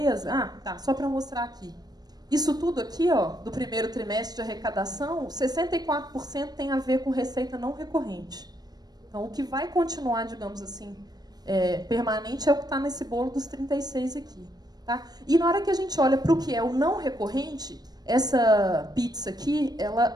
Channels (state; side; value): late; left; 0.19 ms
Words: só para mostrar aqui. Isso tudo aqui, ó, do primeiro trimestre de arrecadação, 64% tem a ver com receita não recorrente. Então, o que vai continuar, digamos assim, permanente é o que está nesse bolo dos 36 aqui. Tá? E na hora que a gente olha para o que é o não recorrente, essa pizza aqui,